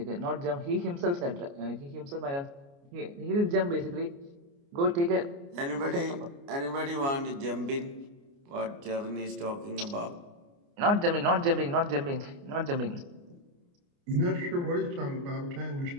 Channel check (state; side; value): late; left; 29 ms